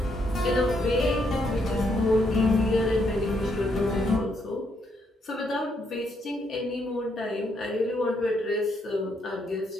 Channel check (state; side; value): normal; both; correlation 0.75